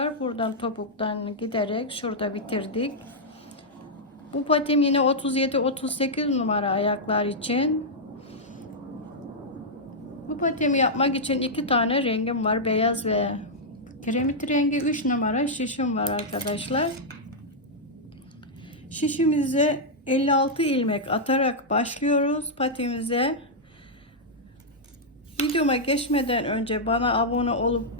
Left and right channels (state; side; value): normal; both; correlation -0.06